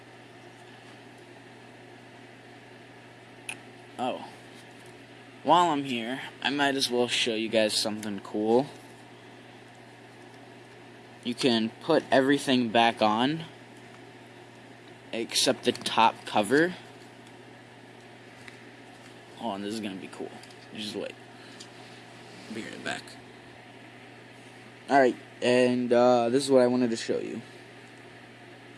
Oh. While I'm here, I might as well show you guys something cool. You can put everything back on, except the top cover. Oh, and this is gonna be cool. Just wait. I'll be right back. Alright, and this is what I wanted to show you.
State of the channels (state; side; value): identical; both; correlation 1.00